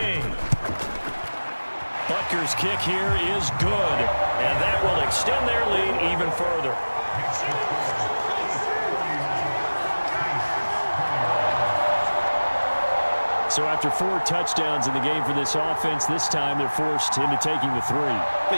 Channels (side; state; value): both; inverted; correlation -1.00